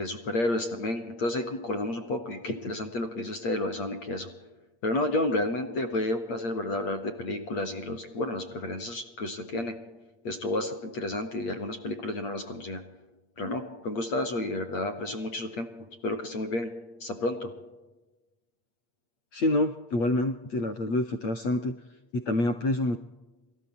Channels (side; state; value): right; late; 8.6 ms